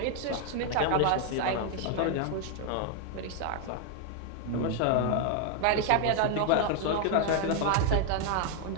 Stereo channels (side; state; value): both; different; correlation 0.00